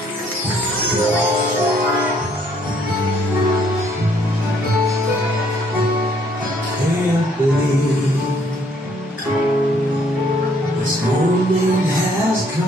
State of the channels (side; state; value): both; normal; correlation 0.65